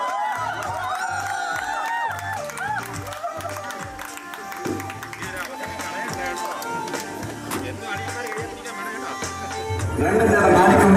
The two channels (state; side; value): identical; both; correlation 1.00